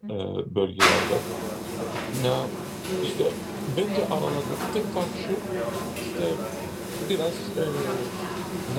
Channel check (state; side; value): identical; both; correlation 1.00